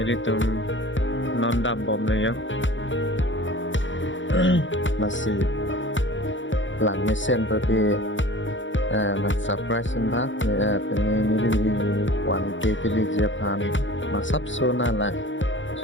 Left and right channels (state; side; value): late; right; 0.55 ms